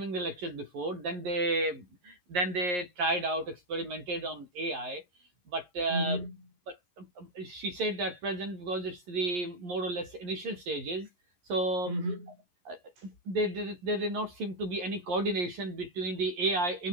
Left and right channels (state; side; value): late; left; 11 ms